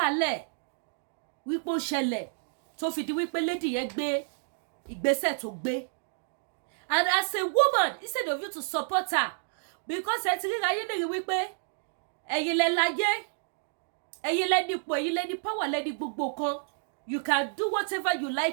Wípé ó ṣẹlẹ̀ tó fi di wípé lady yẹn gbé ìgbésẹ̀ tó gbé. And as a woman, instead of you to support her, because ẹ ti ríra yín lè rí wípé ẹ̀yin lẹ láyé, ẹ̀yin lẹ nípò, ẹ̀yin lẹ ní power, lẹ ní gbogbo kan. You can do whatever you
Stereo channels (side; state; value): left; silent; digital silence